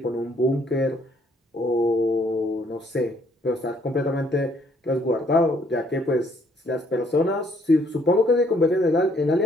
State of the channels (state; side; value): normal; both; correlation 0.66